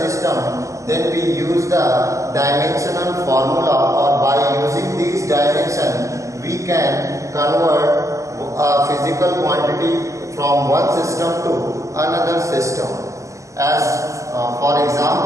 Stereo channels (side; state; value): left; late; 0.15 ms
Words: then we use the dimensional formula, or by using these dimensions we can convert a physical quantity from one system to another system. As for